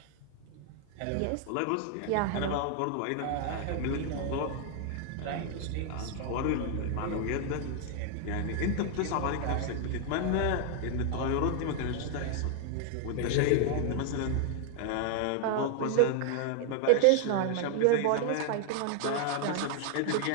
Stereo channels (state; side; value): different; both; correlation 0.00